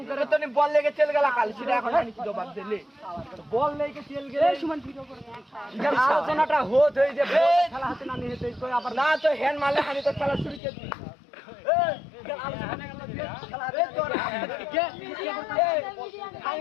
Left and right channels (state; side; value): drops out; right; at 10.6 s